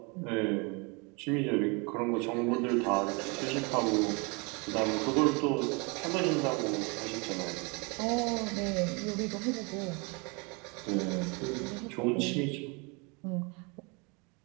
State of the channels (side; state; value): left; quieter; 30.4 dB